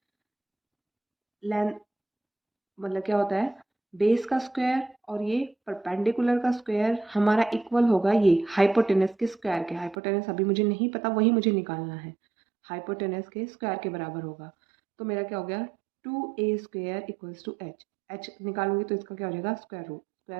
लेंथ मतलब क्या होता है? बेस का स्क्वायर और ये परपेंडिकुलर का स्क्वायर हमारा इक्वल होगा ये हाइपोटेनस के स्क्वायर के। हाइपोटेनस अभी मुझे नहीं पता, वही मुझे निकालना है। हाइपोटेनस के स्क्वायर के बराबर होगा। तो मेरा क्या हो गया? 2a² equals to H. H निकालूंगी तो इसका क्या हो जाएगा?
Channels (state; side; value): drops out; left; at 10.0 s